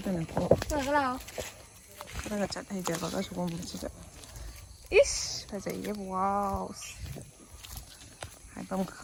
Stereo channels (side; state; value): both; identical; correlation 1.00